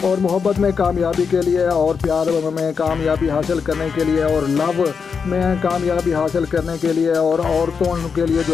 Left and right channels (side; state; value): right; quieter; 5.9 dB